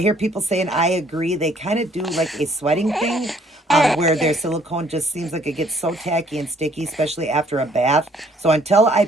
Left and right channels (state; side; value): normal; both; correlation 0.62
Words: hear people saying, I agree, they kind of do like a sweating thing where their silicone just seems like it gets so tacky and sticky, especially after a bath. So until I